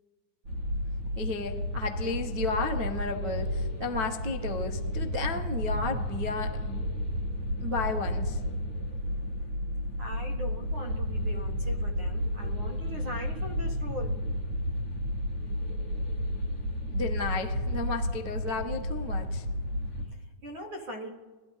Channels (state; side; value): late; left; 9.2 ms